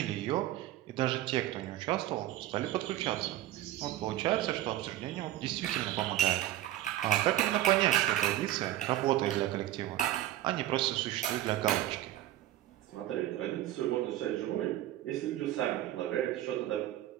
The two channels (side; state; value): left; quieter; 13.8 dB